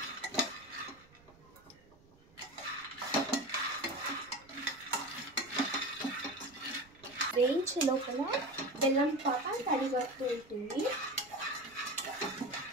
వేయించే లోపల బెల్లం పాక తడిగడుతూ ఉంటుంది.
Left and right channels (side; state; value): right; noise; rumble, 27 dB below the sound